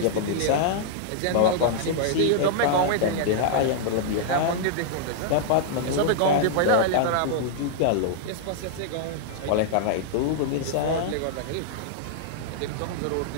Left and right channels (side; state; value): both; different; correlation -0.01